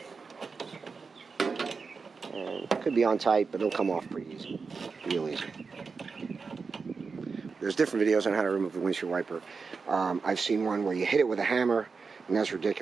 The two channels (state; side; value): quieter; left; 4.9 dB